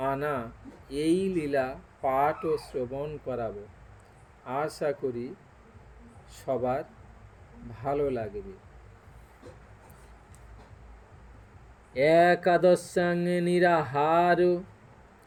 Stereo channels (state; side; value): identical; both; correlation 1.00